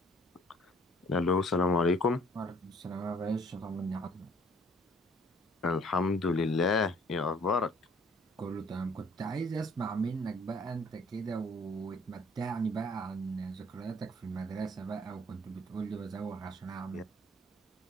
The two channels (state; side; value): normal; both; correlation 0.57